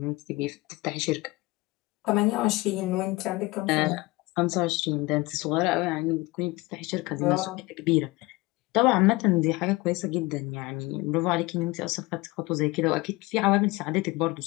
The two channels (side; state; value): right; quieter; 22.0 dB